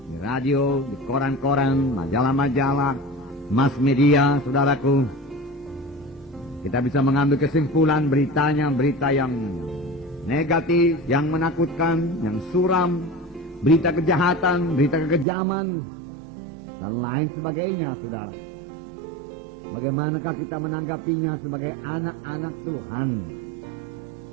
di radio, di koran-koran, majalah-majalah, mass media, saudaraku. Kita bisa mengambil kesimpulan beritanya, berita yang negatif, yang menakutkan, yang suram, berita kejahatan, berita kekejaman, dan lain sebagainya, saudara. Bagaimanakah kita menanggapinya sebagai anak-anak Tuhan?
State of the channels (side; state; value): left; drops out; at 15.2 s